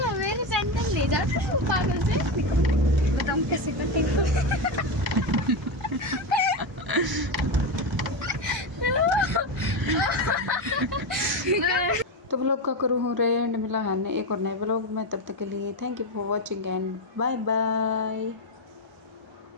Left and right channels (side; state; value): both; normal; correlation 0.13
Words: मेरी सैंडल ले जाते हो पागल से। बताऊँ कैसे करती हूँ। तो व्लॉग का करूँ हो रहे एंड मिला है एक और नए व्लॉग में, तब तक के लिए thank you for watching and bye bye.